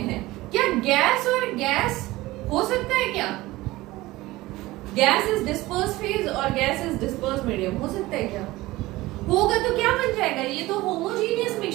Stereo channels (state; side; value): quieter; left; 18.8 dB